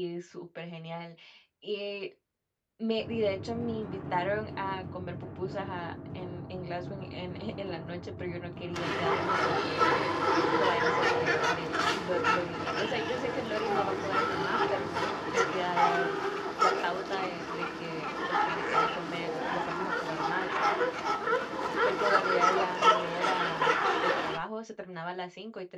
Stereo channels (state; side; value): identical; both; correlation 1.00